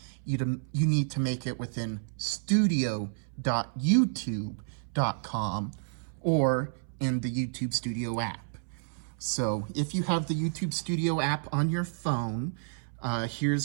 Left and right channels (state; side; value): silent; left; 58 dB below the other